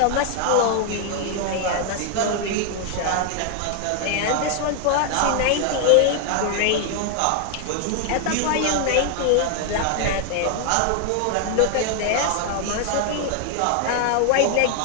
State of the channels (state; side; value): different; both; correlation 0.00